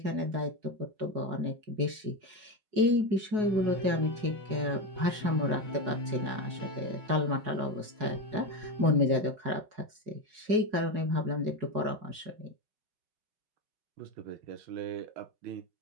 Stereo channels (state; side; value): late; left; 4.7 ms